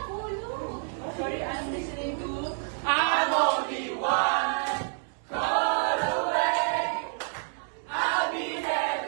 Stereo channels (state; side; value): silent; left; 57 dB below the other